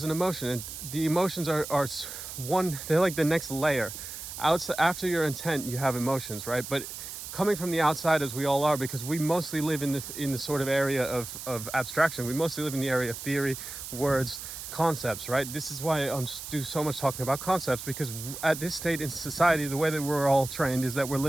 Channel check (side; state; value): right; noise; hiss, 9 dB below the sound